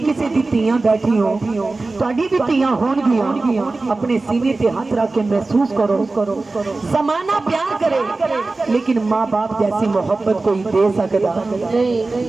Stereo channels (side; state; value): left; quieter; 3.4 dB